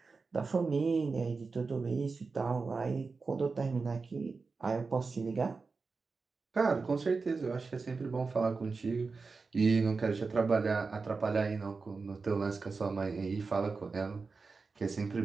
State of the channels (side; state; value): left; quieter; 4.4 dB